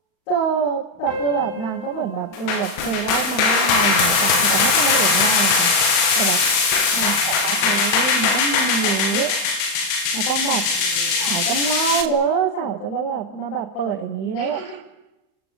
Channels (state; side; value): late; right; 35 ms